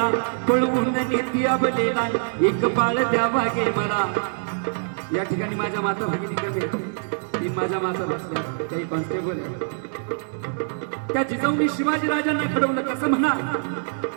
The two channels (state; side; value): silent; left; 63 dB below the other